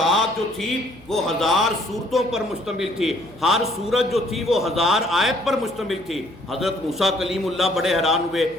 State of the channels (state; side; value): noise; left; hum, 25 dB below the sound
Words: جو تھی وہ 1000 سورتوں پر مشتمل تھی، ہر سورت جو تھی وہ 1000 آیت پر مشتمل تھی۔ حضرت موسیٰ کلیم اللہ بڑے حیران ہوئے،